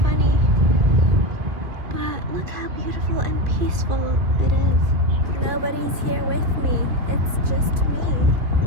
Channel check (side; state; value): left; late; 2.3 ms